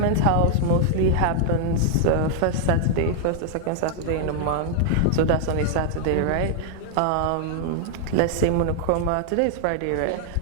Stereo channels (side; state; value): both; different; correlation 0.00